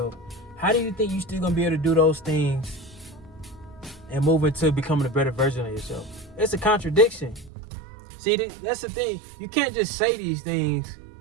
how do you think you're still gonna be able to do those things and move into becoming a better version of yourself? It's a contradiction. See, that's the thing. You can't just say these things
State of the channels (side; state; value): left; drops out; at 7.5 s